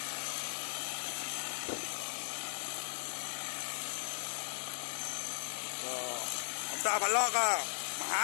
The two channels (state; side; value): silent; right; digital silence